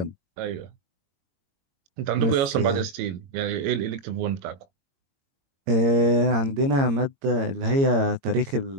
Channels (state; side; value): late; left; 22 ms